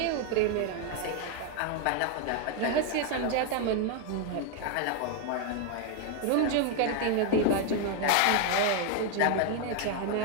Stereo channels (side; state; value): both; different; correlation 0.01